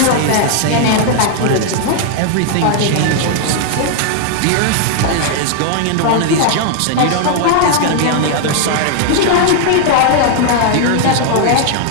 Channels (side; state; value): both; different; correlation 0.00